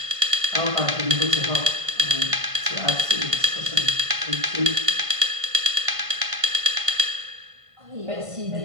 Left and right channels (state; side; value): late; left; 1.5 ms